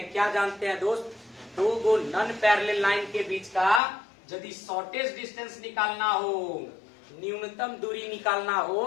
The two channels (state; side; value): drops out; right; at 3.8 s